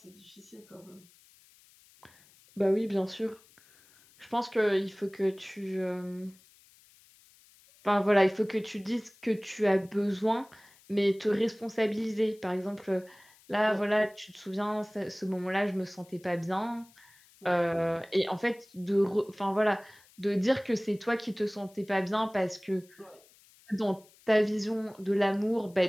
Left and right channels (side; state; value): left; noise; hiss, 28 dB below the sound